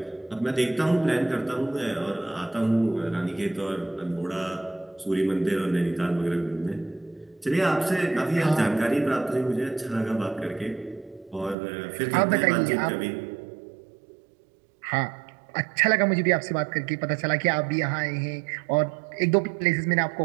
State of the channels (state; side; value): drops out; left; at 11.6 s